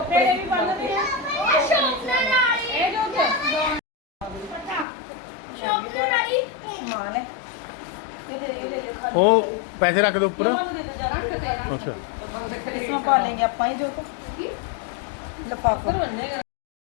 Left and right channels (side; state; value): right; drops out; at 4.9 s